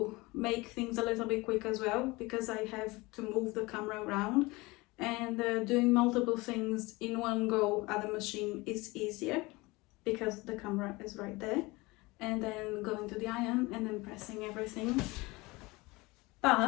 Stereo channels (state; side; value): quieter; right; 23.0 dB